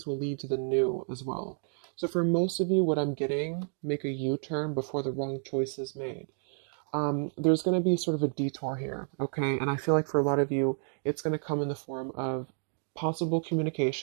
will lead to the new as well. So for most of you, what I'm getting, make a U-turn before the wrong choice is made. There's going to be sort of a detour here, okay? And I feel like for a lot of you, it's going to come in the form of possible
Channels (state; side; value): silent; left; 56 dB below the other